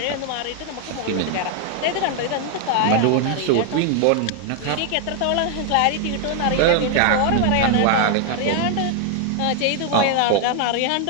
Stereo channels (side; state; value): both; different; correlation 0.00